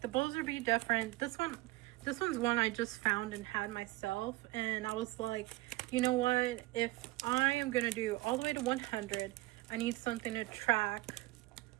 the bowls would be different. This one's one I just found and had myself, and I was like, you know what, if I am gonna do all the way to 100, I need something to track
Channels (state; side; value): quieter; left; 20.0 dB